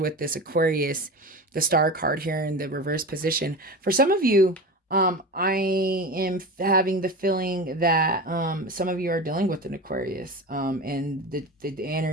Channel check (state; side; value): normal; both; correlation 0.28